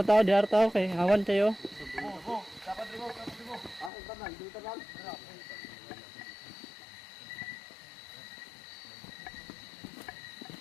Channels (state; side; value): drops out; right; at 3.9 s